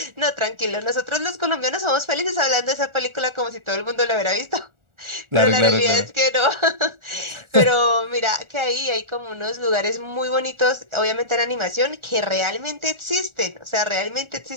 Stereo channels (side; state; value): left; late; 1.4 ms